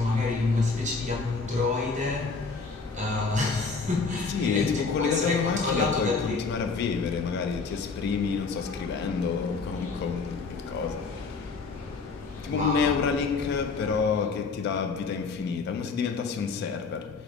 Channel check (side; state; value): right; quieter; 4.5 dB